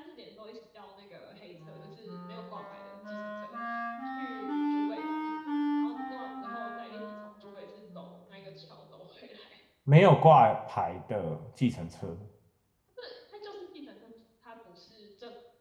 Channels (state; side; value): identical; both; correlation 1.00